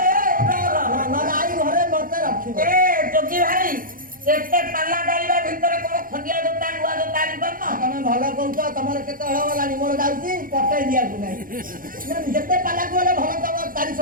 ନହେଲେ ଆଇ ଘରେ ମତେ ରଖିବ ଏ ଯୋଗୀ ଭାଇ ଏତେ ପାଲା ଗାଇବା ଭିତରେ କଣ ଖଣ୍ଡିଆ ଜୋତା ନୂଆ ଜୋତା ଆଣିପାରୁନ? ତମେ ଭଲ କହୁଛ ତମର କେତେ ହଳ ଗଲାଣି ମୋର ଯାଉଛି ପଠେଇ ଦିଆକୁ ନାହିଁ ଯେତେ ପାଲାକୁ ଗଲେ ଭଲ ତମ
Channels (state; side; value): late; left; 0.40 ms